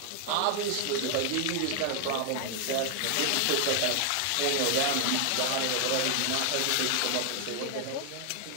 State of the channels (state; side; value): different; both; correlation 0.00